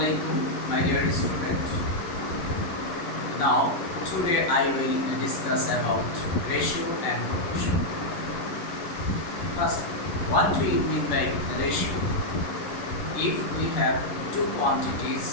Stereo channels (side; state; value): right; late; 11 ms